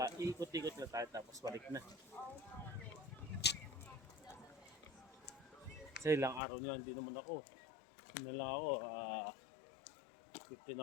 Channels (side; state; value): right; drops out; at 6.4 s